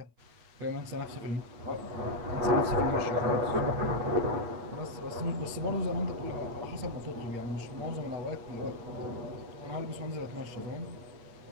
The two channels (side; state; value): left; late; 8.7 ms